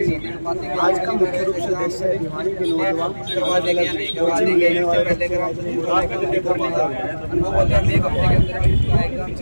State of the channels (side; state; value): both; inverted; correlation -1.00